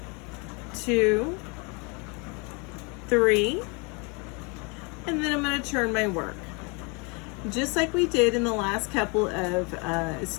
2, 3, and then I'm going to turn my work. Just like we did in the last couple of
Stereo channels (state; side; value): quieter; right; 31.4 dB